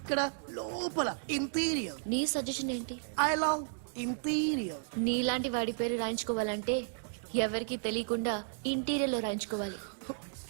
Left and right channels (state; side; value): silent; left; digital silence